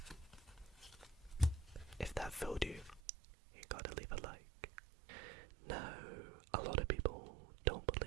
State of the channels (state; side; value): drops out; left; at 3.0 s